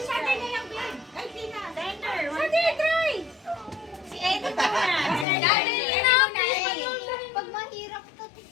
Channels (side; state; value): right; drops out; at 5.2 s